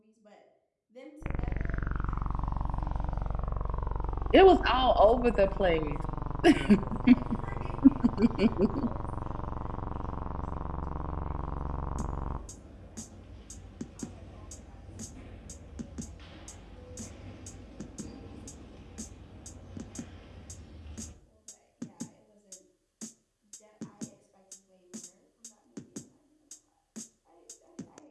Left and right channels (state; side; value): identical; both; correlation 1.00